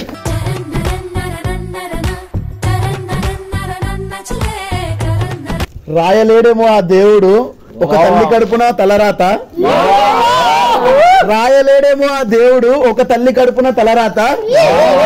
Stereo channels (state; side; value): identical; both; correlation 1.00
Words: రాయలేడేమో ఆ దేవుడు ఒక తల్లి కడుపున తలరాత. రాయలేడేమో ఆ దేవుడు ఒక తల్లి కడుపున తలరాత.